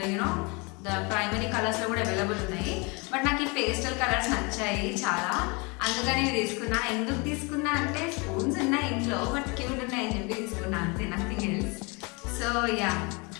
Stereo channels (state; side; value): quieter; right; 29.3 dB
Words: the primary కలర్స్లో కూడా అవైలబుల్ ఉన్నాయి. బట్ నాకు ఈ పేస్టల్ కలర్స్ నచ్చాయి చాలా, అందుకని ఇవి తీసుకున్నా. ఎందుకు తీసుకున్నా అంటే స్పూన్స్ ఉన్నాయి ఇంట్లో, బట్ క్యూట్ ఉన్నాయి అని చెప్పి తీసుకున్నా, అంతే, నథింగ్ ఎల్స్. సో యా,